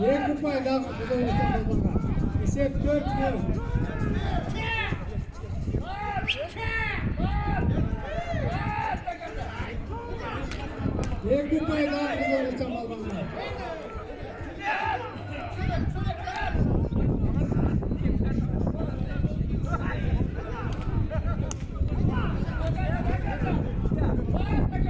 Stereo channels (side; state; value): both; identical; correlation 1.00